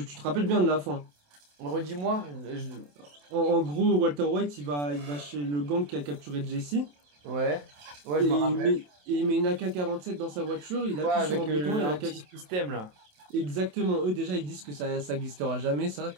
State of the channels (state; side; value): late; left; 27 ms